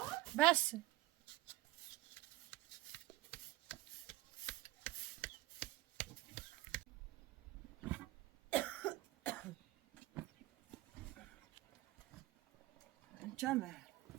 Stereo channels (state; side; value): quieter; left; 17.4 dB